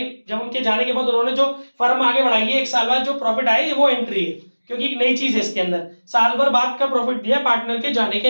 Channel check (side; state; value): both; inverted; correlation -1.00